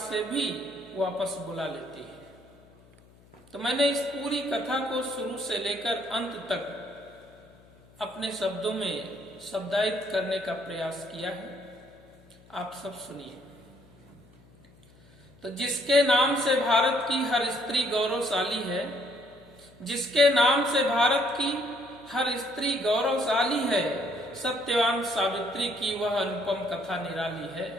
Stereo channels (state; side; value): noise; left; hum, 27 dB below the sound